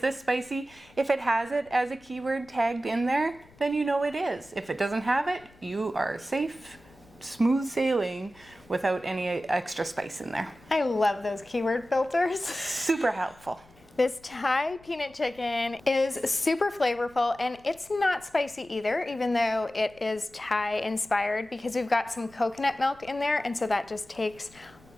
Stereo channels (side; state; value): left; noise; rumble, 27 dB below the sound